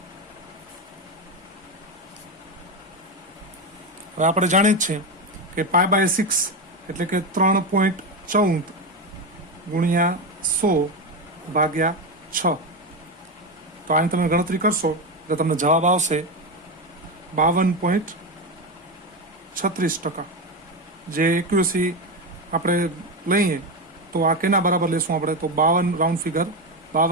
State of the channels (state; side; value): normal; both; correlation 0.14